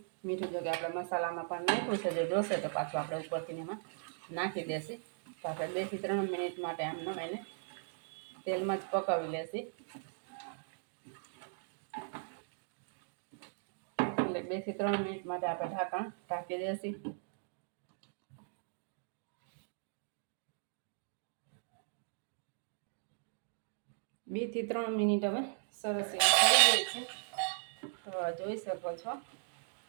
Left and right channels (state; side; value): silent; left; digital silence